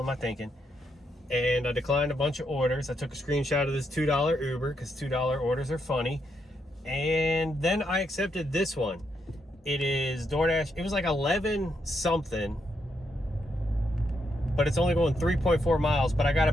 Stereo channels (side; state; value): both; normal; correlation 0.79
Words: am I thinking? And I declined a bunch of orders. I took a screenshot of this $2 Uber because $2 orders are funny. And then I accepted this one. It is DoorDash. It was like 11 something, but it's only going 3.4 miles. But I got to